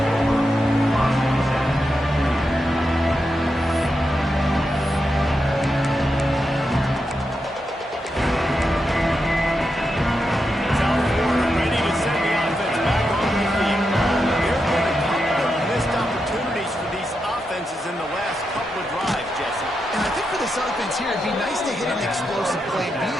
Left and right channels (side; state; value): both; normal; correlation 0.86